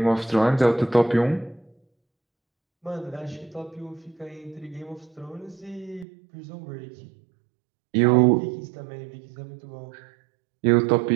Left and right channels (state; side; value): drops out; left; at 6.1 s